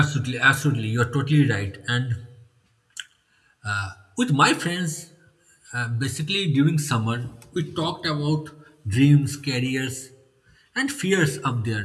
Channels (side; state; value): both; identical; correlation 1.00